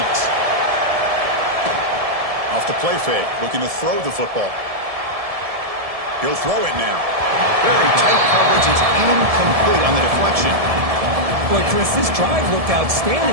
Off the play fake, looking to throw the football. He'll throw it now. Very tight coverage. It's incomplete on the deflection. Boy, Chris, this drive looked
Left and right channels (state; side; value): late; left; 1.7 ms